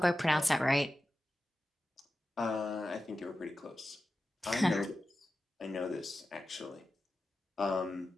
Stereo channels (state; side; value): normal; both; correlation 0.93